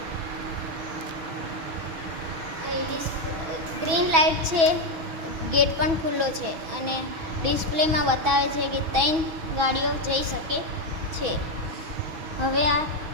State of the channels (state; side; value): late; left; 6.1 ms